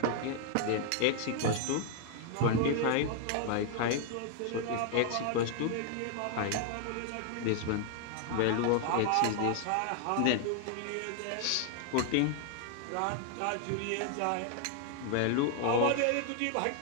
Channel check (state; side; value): different; both; correlation 0.00